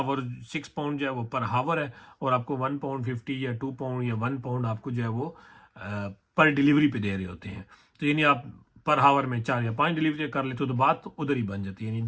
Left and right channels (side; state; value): both; identical; correlation 1.00